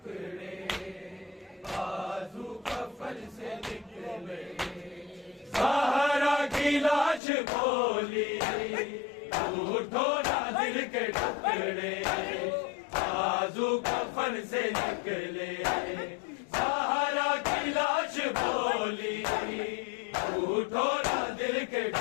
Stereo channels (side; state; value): right; drops out; at 7.2 s